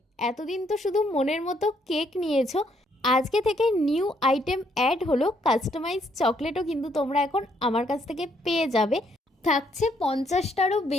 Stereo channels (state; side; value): normal; both; correlation 0.71